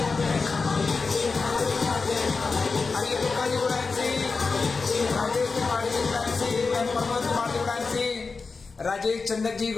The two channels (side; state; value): right; quieter; 4.4 dB